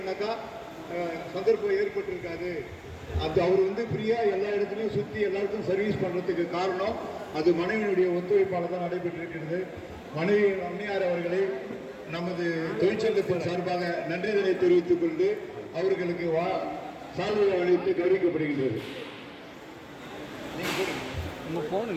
சந்தர்ப்பம் ஏற்பட்டிருக்காது. அது அவர் ஃப்ரீயாக எல்லா இடத்துலையும் சுற்றி எல்லாருக்கும் சர்வீஸ் பண்ணுறதுக்கு காரணம் அது மனைவியினுடைய ஒத்துழைப்பால் தான் நடைபெற்றிருக்கிறது. மனைவி அம்மையார் அவர்களை நமது தொழிற்சங்கத்தின் சார்பாக நன்றிதனை தெரிவித்துக் கொண்டு அவர்களுக்கு சால்வை அளித்து கௌரவிக்கப்படுகின்றது.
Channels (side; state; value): both; identical; correlation 1.00